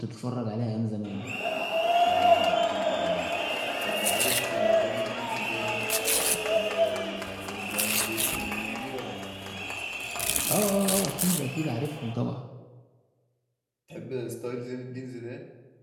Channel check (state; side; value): identical; both; correlation 1.00